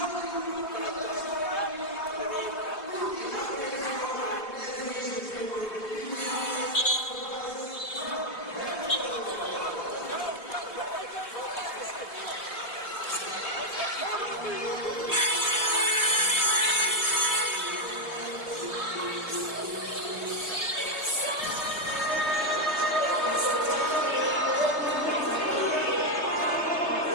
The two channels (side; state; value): right; late; 3.3 ms